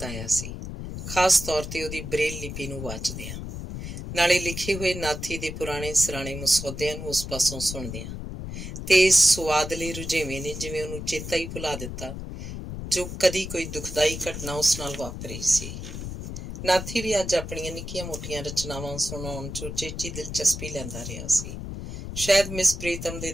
ਸੀ, ਖਾਸ ਤੌਰ ਤੇ ਉਹਦੀ ਬਰੇਲ ਲਿਪੀ ਨੂੰ ਵਾਚਦਿਆਂ, ਨਾਲੇ ਲਿਖੇ ਹੋਏ ਨਾਥੀ ਦੇ ਪੁਰਾਣੇ ਸਰਾਣੇ ਮਸੌਦਿਆਂ ਨੂੰ ਉਸ ਪਾਸੋਂ ਸੁਣਦਿਆਂ। ਤੇ ਇਸ ਸੁਆਦਲੇ ਰੁਝੇਵੇਂ ਨੇ ਜਿਵੇਂ ਉਹਨੂੰ ਚੇਤਾ ਹੀ ਭੁਲਾ ਦਿੱਤਾ ਜੋ ਕਦੀ ਕੋਈ ਦੁਖਦਾਈ ਘਟਨਾ ਉਸ ਨਾਲ ਵਾਪਰੀ ਸੀ। ਨਾਥੀ ਵੀ ਅੱਜ ਆਪਣੀਆਂ ਨਿੱਕੀਆਂ ਮੋਟੀਆਂ ਰਚਨਾਵਾਂ ਸੁਣਾਉਣ 'ਚ ਉਚੇਚੀ ਦਿਲਚਸਪੀ ਲੈਂਦਾ ਰਿਹਾ ਸੀ। ਸ਼ਾਇਦ ਮਿਸ ਪ੍ਰੀਤਮ ਦੇ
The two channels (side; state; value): left; noise; rumble, 7 dB below the sound